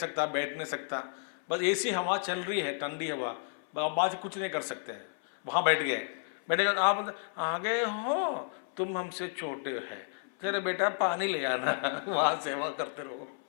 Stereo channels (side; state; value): right; silent; 57 dB below the other